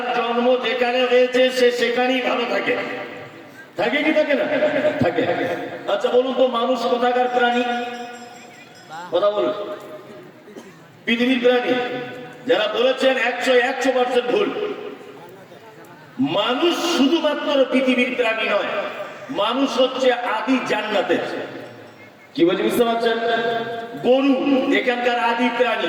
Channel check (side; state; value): both; identical; correlation 1.00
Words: জন্ম যেখানে হয়েছে সে সেখানেই ভালো থাকে। থাকে কি থাকে না? থাকে। আচ্ছা বলুন তো, মানুষ কোথাকার প্রাণী? কথা বলুন। পৃথিবীর প্রাণী। যারা বলেছেন 100% ভুল। মানুষ শুধুমাত্র পৃথিবীর প্রাণী নয়, মানুষ হচ্ছে আদি জান্নাতের। কি বলছি বুঝতে পারছেন? গরু এখানকার আদি প্রাণী।